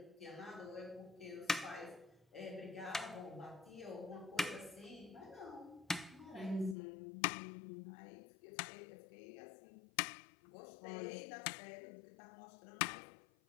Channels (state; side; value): drops out; right; at 6.8 s